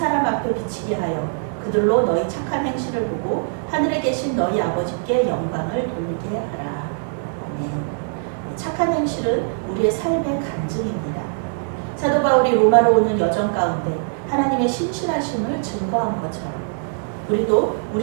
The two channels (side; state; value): left; silent; digital silence